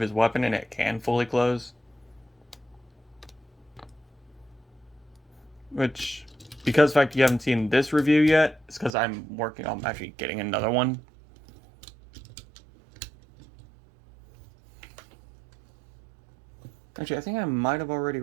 his weapon and it can fully close. Which, because of the fact you haven't seen this review yet, it's because I'm working on actually getting another one. Actually, I think I might have already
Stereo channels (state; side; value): drops out; left; at 8.9 s